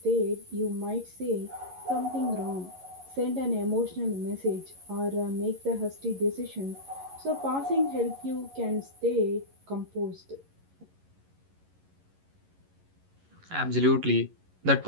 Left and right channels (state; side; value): late; left; 11 ms